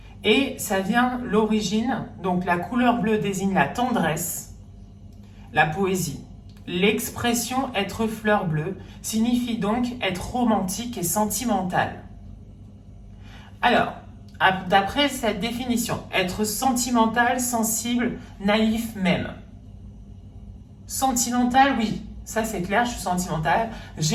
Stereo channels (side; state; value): both; identical; correlation 1.00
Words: Et ça vient l'origine, donc la couleur bleue désigne la tendresse, la poésie. L'expression être fleur bleue signifie donc être romantique et sentimental. Alors, d'après cette définition, être sentimental, sensible, naïf même. Sentimental, oui, ça c'est clair, je suis sentimentale,